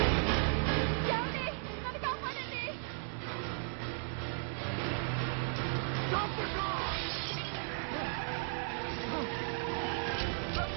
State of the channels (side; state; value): left; silent; 54 dB below the other